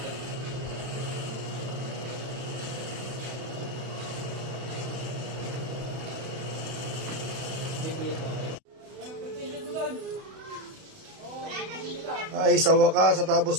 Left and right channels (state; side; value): late; left; 31 ms